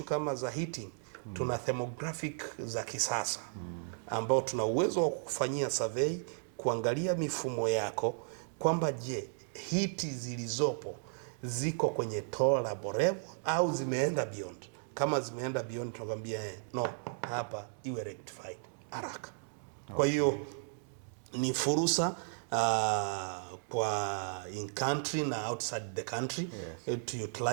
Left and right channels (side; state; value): left; silent; digital silence